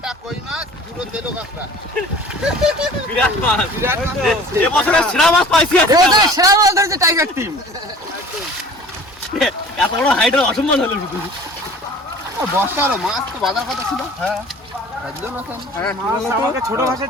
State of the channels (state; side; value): normal; both; correlation 0.46